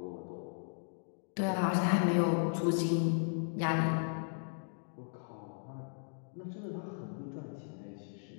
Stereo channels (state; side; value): silent; right; digital silence